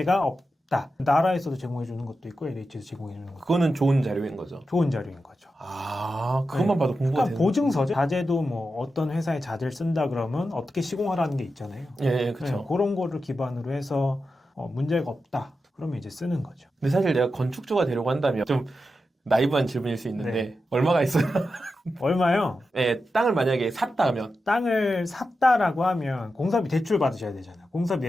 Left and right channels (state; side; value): normal; both; correlation 0.90